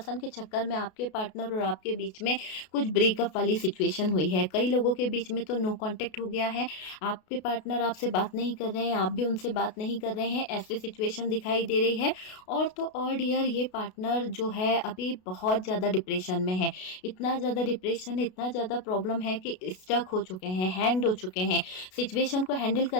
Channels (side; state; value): right; late; 33 ms